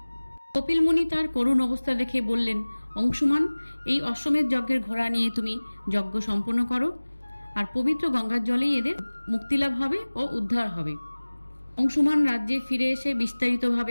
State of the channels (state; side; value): inverted; both; correlation -1.00